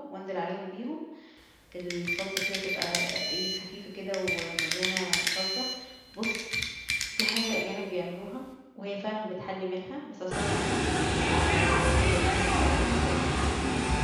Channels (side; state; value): both; identical; correlation 1.00